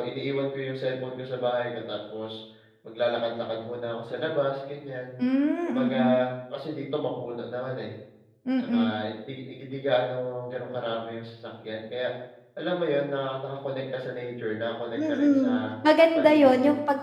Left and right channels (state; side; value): identical; both; correlation 1.00